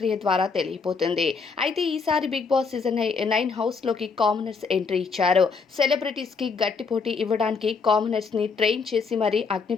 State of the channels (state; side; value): quieter; right; 5.0 dB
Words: ద్వారా తెలియపోతుంది. అయితే ఈసారి బిగ్ బాస్ సీజన్ 9 హౌస్లోకి కామనర్స్ ఎంట్రీ ఇచ్చారు. సెలబ్రిటీస్కి గట్టి పోటీ ఇవ్వడానికి కామనర్స్ని ట్రైన్ చేసి మరీ అగ్ని